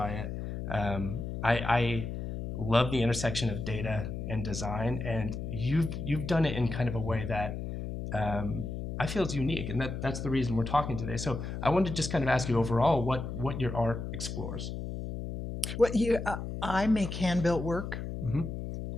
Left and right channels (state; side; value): noise; left; hum, 5 dB below the sound